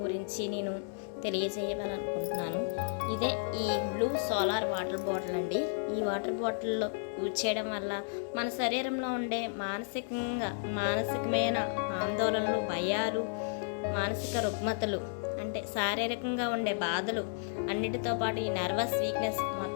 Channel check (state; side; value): silent; right; digital silence